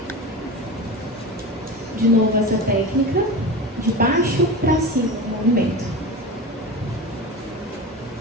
De novo essa técnica, de baixo para cima, o movimento.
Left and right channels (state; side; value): normal; both; correlation 0.28